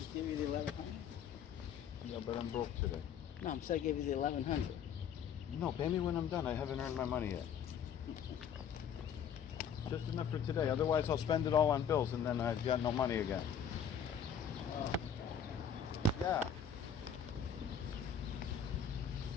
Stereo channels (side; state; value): right; quieter; 7.5 dB